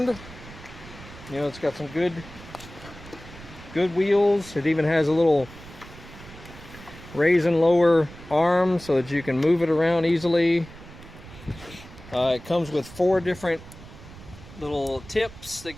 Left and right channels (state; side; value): noise; right; rumble, 17 dB below the sound